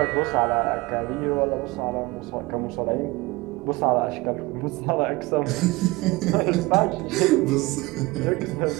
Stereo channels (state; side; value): quieter; left; 22.1 dB